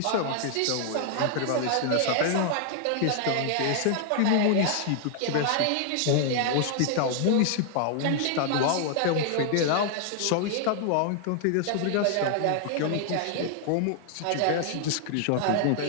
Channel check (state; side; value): different; both; correlation 0.00